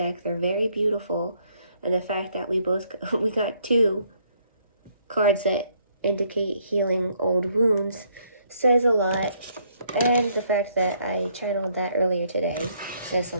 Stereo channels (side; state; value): both; inverted; correlation -0.69